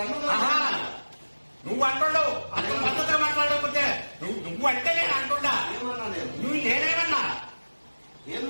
నువ్వు అంటున్నావు అతను పద్ధతిగా మాట్లాడకపోతే నువ్వు అంటే నేను అంటున్నా. నువ్వు నేనేమన్నా ఏం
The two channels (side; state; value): both; inverted; correlation -1.00